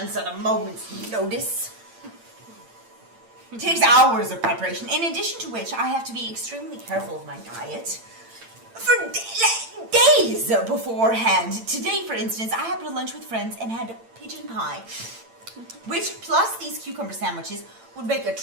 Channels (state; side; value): late; left; 8.8 ms